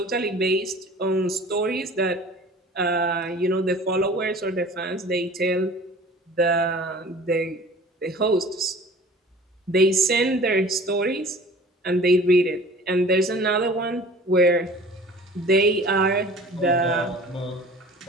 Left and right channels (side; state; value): both; normal; correlation 0.45